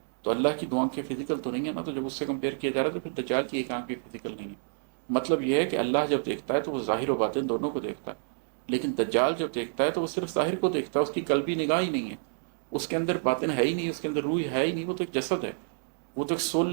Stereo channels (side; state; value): left; silent; digital silence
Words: تو اللہ کی دو آنکھیں فزیکل تو نہیں ہے نا، تو جب اس سے کمپیئر کیا جا رہا ہے تو پھر دجال کی ایک آنکھ بھی فزیکل نہیں ہے۔ مطلب یہ ہے کہ اللہ جب دیکھتا ہے تو وہ ظاہر و باطن دونوں کو دیکھتا ہے، لیکن دجال جب دیکھتا ہے تو وہ صرف ظاہر کو دیکھتا ہے، اس کی قلبی نگاہ ہی نہیں ہے، اس کے اندر باطن ہے ہی نہیں، اس کے اندر روح ہے ہی نہیں، وہ تو ایک جسد ہے، وہ تو ایک سول